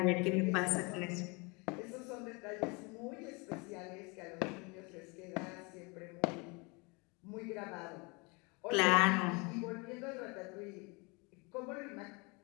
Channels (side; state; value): right; quieter; 29.0 dB